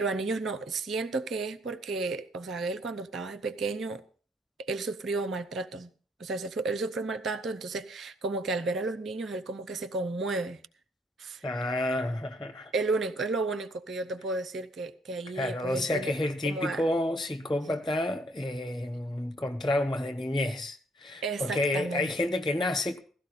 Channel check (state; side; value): normal; both; correlation 0.65